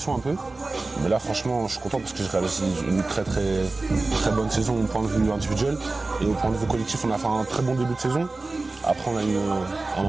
un peu. Mais là franchement je suis content parce que j'ai réalisé une très bonne saison au point de vue individuel. Et au point de vue collectif, on a fait un très bon début de saison. Après on a eu un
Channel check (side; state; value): left; quieter; 3.3 dB